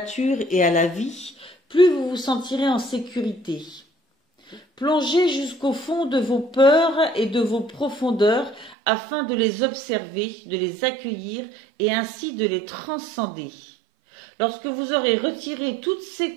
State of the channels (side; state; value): left; drops out; at 8.8 s